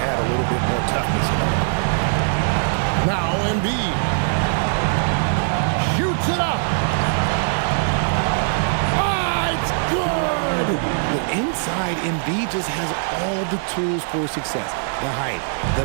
a little bit more toughness in it. Now Embiid shoots it up. Ah, it's good. The inside, Embiid just has all the tools for success. The height,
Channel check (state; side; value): silent; left; digital silence